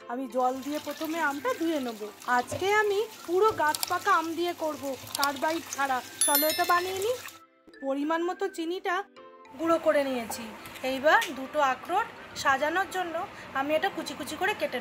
আমি জল দিয়ে প্রথমে আমটা ধুয়ে নেব। আজকে আমি পুরো গাছ পাকা আম দিয়ে করব, কার্বাইড ছাড়া। চলো এটা বানিয়ে নিই। পরিমাণ মতো চিনিটা গুঁড়ো করে নিয়েছি। এইবার দুটো আখরোট সাজানোর জন্য আমি এটা কুচি কুচি করে কেটে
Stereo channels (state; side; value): identical; both; correlation 1.00